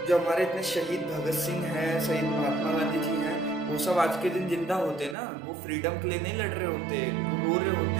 जो हमारे इतने शहीद भगत सिंह हैं, शहीद महात्मा गांधी जी हैं, वो सब आज के दिन जिंदा होते ना, वो फ्रीडम के लिए नहीं लड़ रहे होते, वो रो रहे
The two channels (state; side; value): drops out; left; at 5.2 s